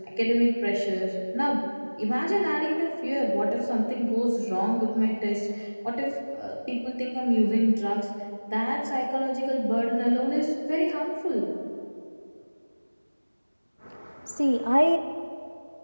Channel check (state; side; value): inverted; both; correlation -1.00